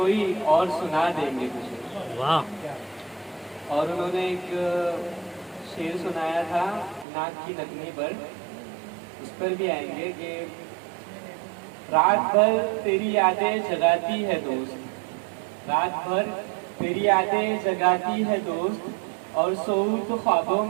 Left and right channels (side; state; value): left; drops out; at 7.1 s